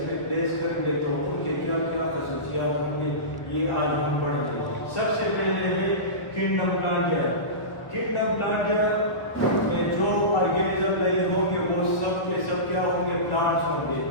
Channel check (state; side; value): late; right; 1.0 ms